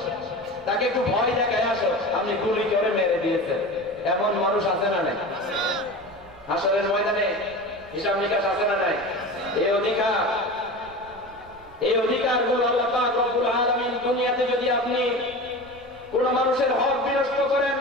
তাকে একটু ভয় দেখায় আসো, আপনি গুলি করে মেরে দিয়েছেন। এমন মানুষ আছে না নাই? হাসরের ময়দানে হিসাব নিকাশ আছে না নাই? এই অধিকারগুলো আল্লাহ পাক রব্বুল আলামিন দুনিয়াতে যদি আপনি কোন মানুষের হক বিনষ্ট করেন,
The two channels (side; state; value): right; noise; rumble, 25 dB below the sound